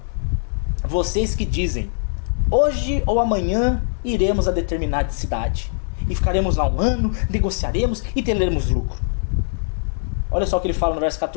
vocês que dizem: hoje ou amanhã iremos a determinada cidade e ficaremos lá um ano, negociaremos e teremos lucro. Olha só o que ele fala no verso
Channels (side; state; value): right; silent; digital silence